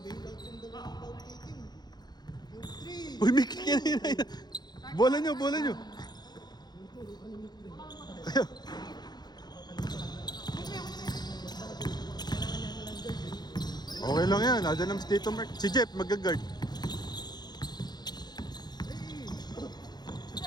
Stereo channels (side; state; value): right; late; 0.20 ms